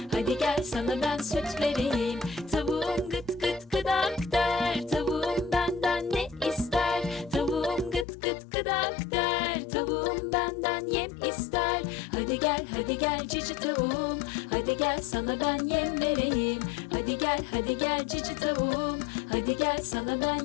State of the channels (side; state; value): right; drops out; at 8.1 s